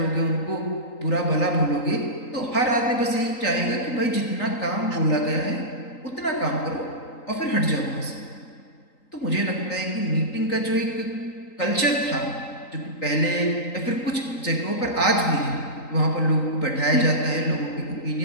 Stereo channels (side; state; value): right; late; 3.9 ms